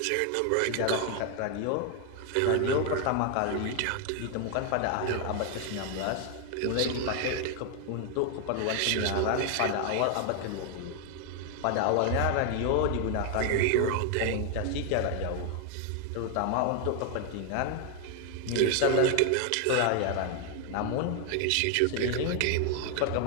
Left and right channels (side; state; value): both; different; correlation 0.00